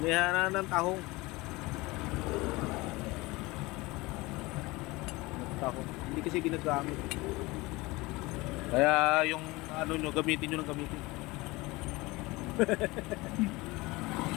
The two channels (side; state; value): right; quieter; 22.1 dB